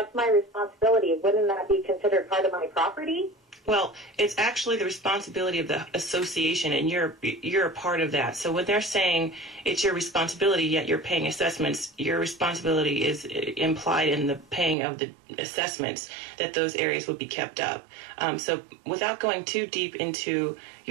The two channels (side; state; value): left; drops out; at 14.8 s